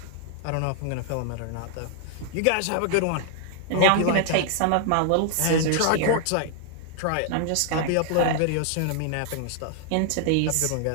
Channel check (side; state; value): both; different; correlation 0.00